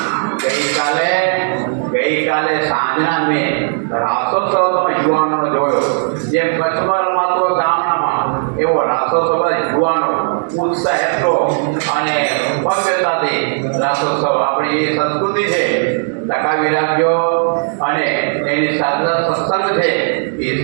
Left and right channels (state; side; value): silent; left; digital silence